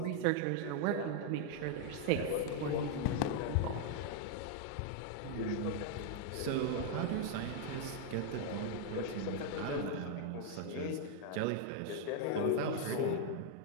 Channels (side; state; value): both; different; correlation 0.00